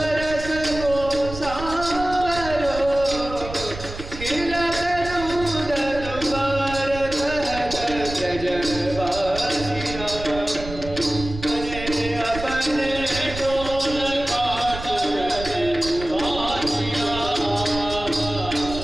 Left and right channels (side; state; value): right; noise; rumble, 11 dB below the sound